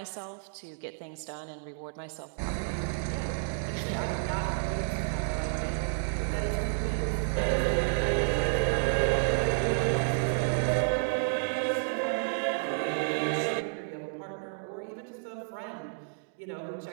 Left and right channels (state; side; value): silent; left; digital silence